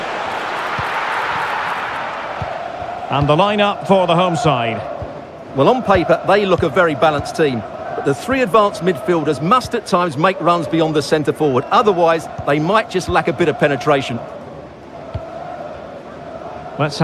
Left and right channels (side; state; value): both; identical; correlation 1.00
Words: And the lineup for the home side. Well, on paper, they look a very balanced team. But the three advanced midfielders must at times make runs beyond the centre-forward. Otherwise, they might just lack a bit of penetration. Let's